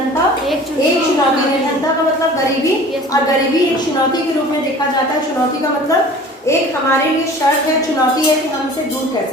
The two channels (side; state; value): both; normal; correlation 0.44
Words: एक चुनौती। निर्धनता का मतलब गरीबी, और गरीबी एक चुनौती के रूप में देखा जाता है। चुनौती का मतलब एक हमारे लिए शर्त है, चुनौती है कि हम इसे दूर